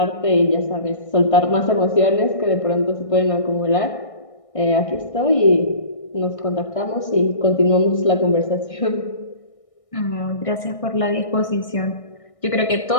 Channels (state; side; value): late; right; 1.6 ms